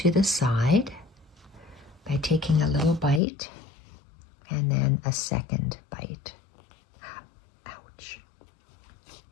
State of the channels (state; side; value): drops out; right; at 3.2 s